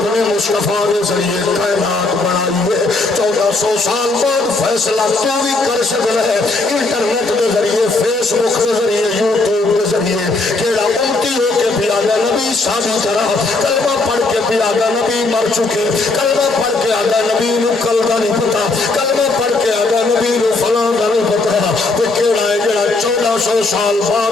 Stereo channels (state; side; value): quieter; right; 3.4 dB